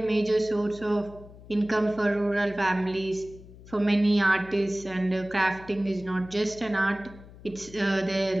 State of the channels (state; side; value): noise; left; hum, 19 dB below the sound